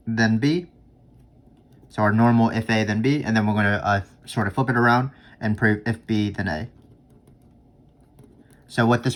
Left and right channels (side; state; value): both; identical; correlation 1.00